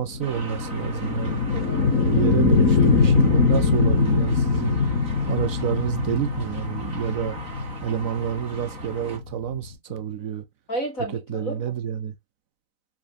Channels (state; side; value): late; right; 4.0 ms